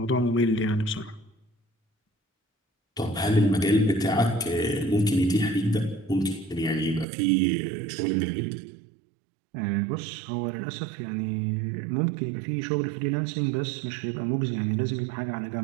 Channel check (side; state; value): left; drops out; at 7.1 s